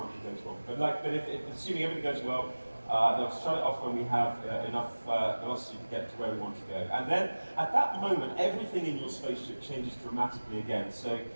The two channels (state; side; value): inverted; both; correlation -1.00